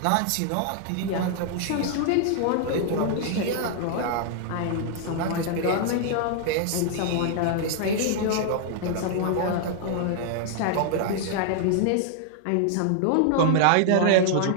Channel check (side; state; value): both; different; correlation -0.01